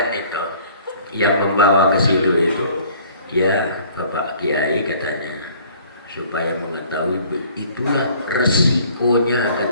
itu yang membawa ke situ itu, ya Bapak Kiai katanya, supaya mengetahui itulah resikonya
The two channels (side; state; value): both; inverted; correlation -0.54